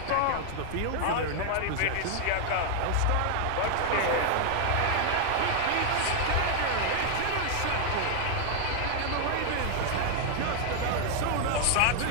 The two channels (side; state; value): both; different; correlation 0.00